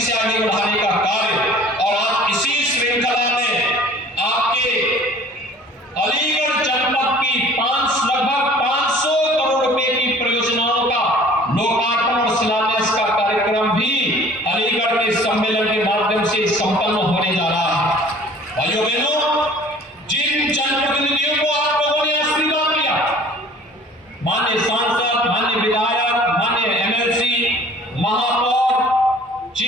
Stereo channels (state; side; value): normal; both; correlation 0.49